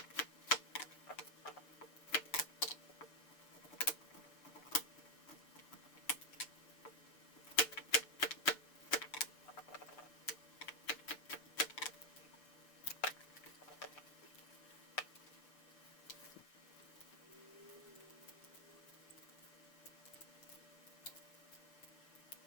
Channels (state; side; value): late; right; 6.7 ms